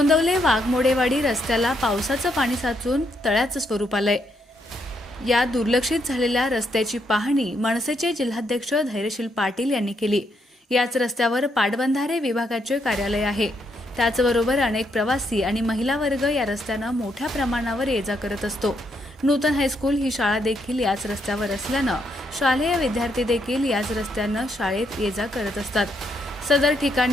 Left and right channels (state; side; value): normal; both; correlation 0.76